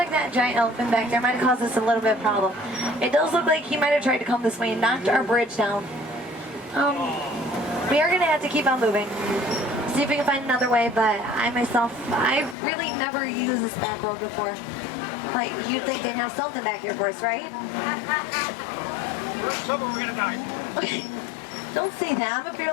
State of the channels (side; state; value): right; drops out; at 12.6 s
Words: that giant elephant back there might have caused us a little bit of problem. It does look like he might have tried to come this way and knocked our bridge down. We are going to have to keep on moving. See if we can find another way, but I really never used this back road before. Like, you'd think they'd have something back here for us, right? We're gonna die. Okay. Don't say that. I'm a